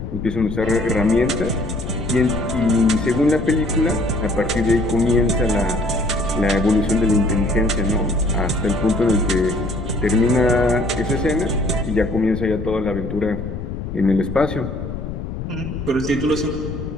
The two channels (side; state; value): left; noise; rumble, 7 dB below the sound